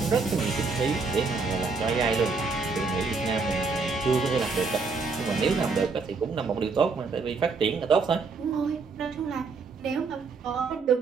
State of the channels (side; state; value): left; quieter; 4.5 dB